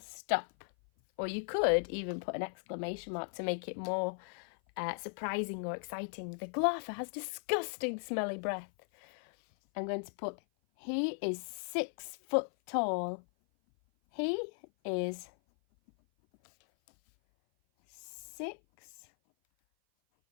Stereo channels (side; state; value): right; silent; 53 dB below the other